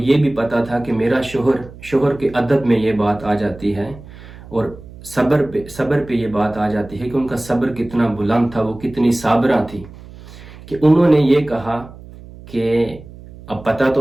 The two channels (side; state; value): right; noise; hum, 18 dB below the sound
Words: بھی پتا تھا کہ میرا شوہر کے ادب میں یہ بات آ جاتی ہے، اور صبر پہ یہ بات آ جاتی ہے کہ ان کا صبر کتنا بلند تھا، وہ کتنی صابرہ تھی، کہ انہوں نے یہ کہا کہ اب پتا